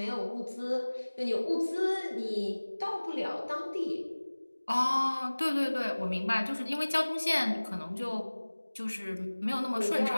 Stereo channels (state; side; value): inverted; both; correlation -1.00